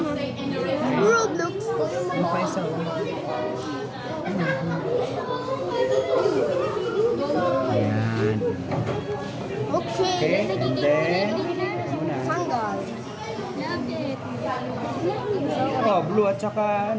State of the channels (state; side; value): identical; both; correlation 1.00